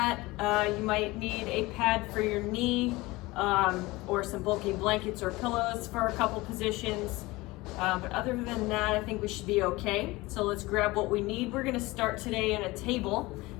You might need a pad for your knee, or some bulky blankets or pillows for a couple positions. But other than that, I think we should be okay. So let's grab what we need. We're gonna start today in a table.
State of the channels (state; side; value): quieter; right; 21.2 dB